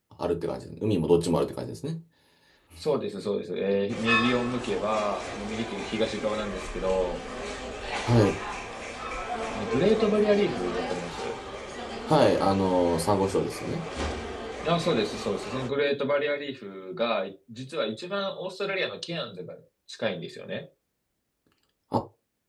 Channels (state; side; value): identical; both; correlation 1.00